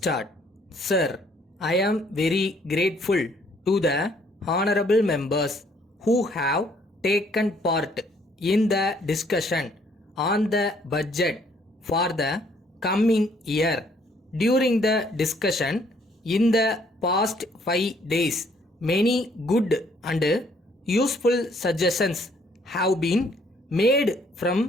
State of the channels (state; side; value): normal; both; correlation 0.64